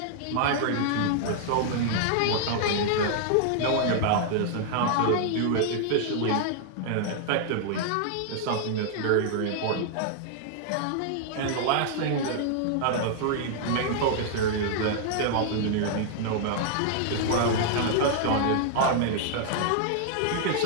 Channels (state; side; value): different; both; correlation 0.00